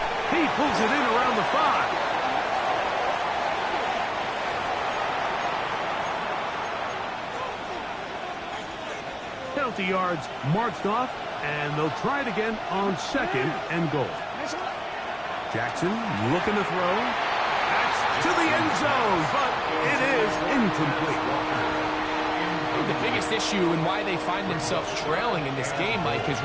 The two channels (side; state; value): both; identical; correlation 1.00